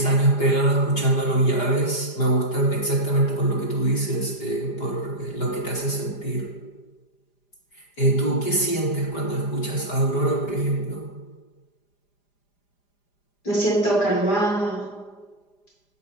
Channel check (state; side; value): late; right; 5.0 ms